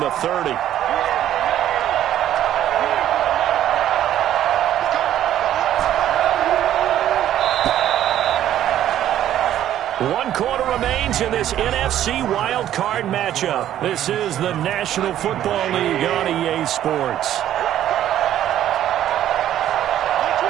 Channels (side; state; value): left; quieter; 11.7 dB